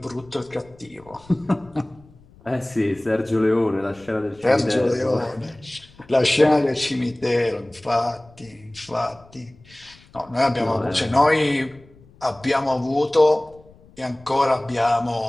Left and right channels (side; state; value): left; noise; rumble, 26 dB below the sound